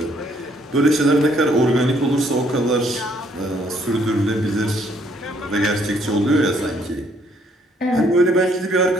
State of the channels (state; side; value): normal; both; correlation 0.67